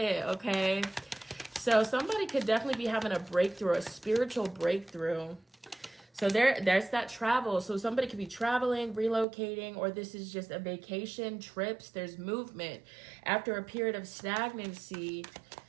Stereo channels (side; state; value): left; drops out; at 9.2 s